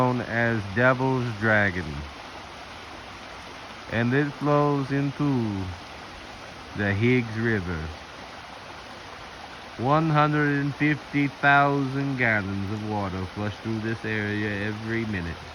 as Devil's Dragon, and it flows into the Higgs River. 150,000 gallons of water flush through this area every minute.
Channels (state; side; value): identical; both; correlation 1.00